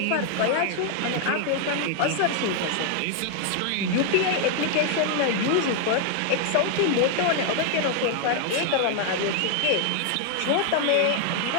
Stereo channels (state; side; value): different; both; correlation 0.00